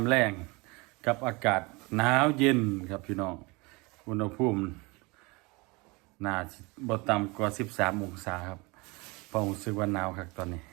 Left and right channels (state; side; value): quieter; left; 26.2 dB